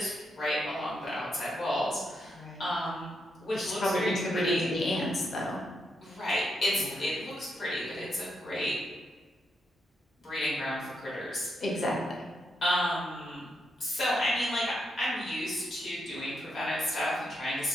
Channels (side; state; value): both; normal; correlation 0.82